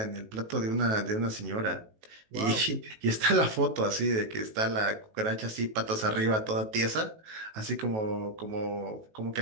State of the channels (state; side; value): late; left; 18 ms